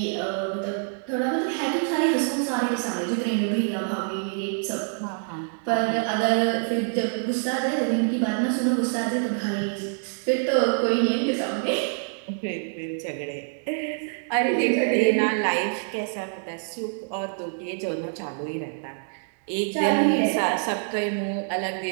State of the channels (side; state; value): left; silent; 61 dB below the other